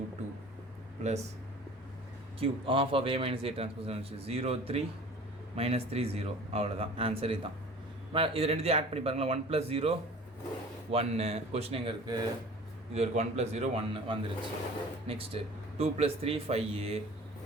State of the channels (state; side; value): normal; both; correlation 0.44